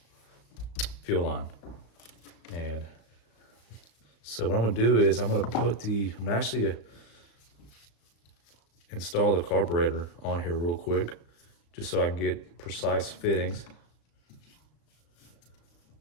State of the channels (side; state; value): right; late; 35 ms